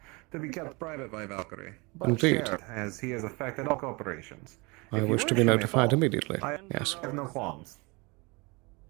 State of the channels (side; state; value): left; quieter; 27.3 dB